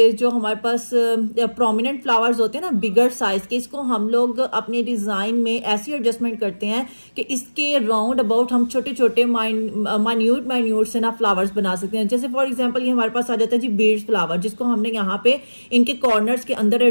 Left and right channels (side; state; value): both; inverted; correlation -1.00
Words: जो हमारे पास प्रोमिनेंट फ्लावर्स होते हैं ना बिगर साइज के, इसको हम लोग अपने डिजाइन में ऐसी एडजस्टमेंट करते हैं कि इसके राउंड अबाउट हम छोटे छोटे माइन्यूट से ना फ्लावर्स बना सकते हैं। जैसे फॉर एग्जांपल ये हमारे पास आ जाता है जी बीड्स फ्लावर, जिसको हमने यहाँ पे इनके कॉर्नर्स के अंदर